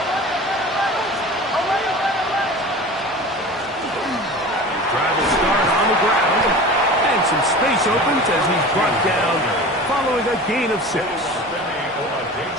brought down following a gain of 6.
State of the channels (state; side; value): normal; both; correlation 0.36